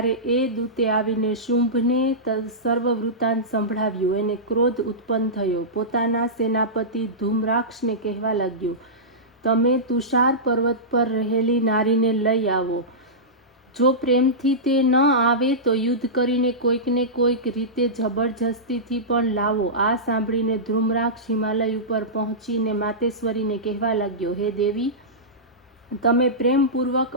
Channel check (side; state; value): both; normal; correlation -0.16